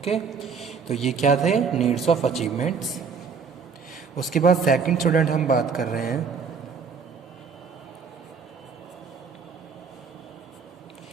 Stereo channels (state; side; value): quieter; left; 5.6 dB